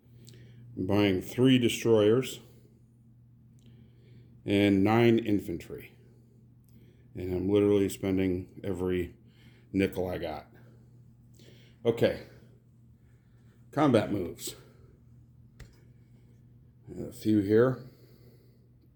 I'm buying 3 destroyers and 9 infantry. And I'm literally spending every nickel I got. Okay. Combat moves. A few here.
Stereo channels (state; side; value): identical; both; correlation 1.00